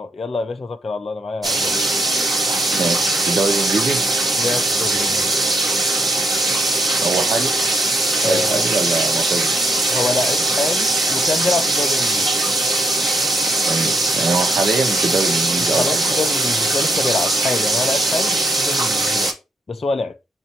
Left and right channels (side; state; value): both; normal; correlation 0.75